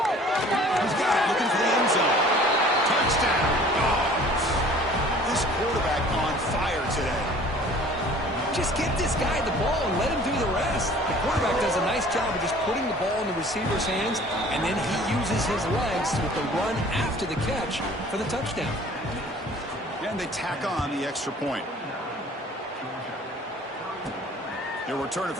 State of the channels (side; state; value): both; normal; correlation 0.50